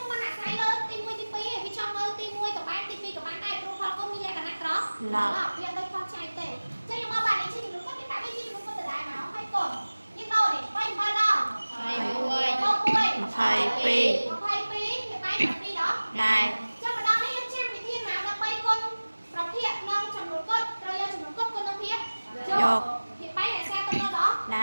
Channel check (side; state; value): both; inverted; correlation -1.00